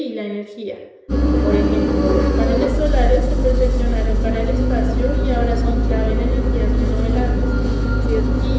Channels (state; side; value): identical; both; correlation 1.00